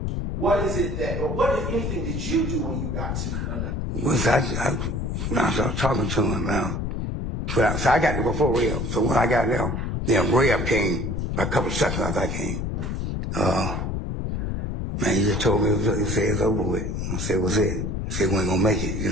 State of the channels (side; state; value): left; noise; rumble, 2 dB below the sound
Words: what if anything did you do when you got to Nut? Well, when I started talking to him, so I got there before Rev. So when I got there, then Rev came a couple of seconds after I came. Man, he just told me, he said it's over with. I said, what's it? He said, we ain't gonna make it, you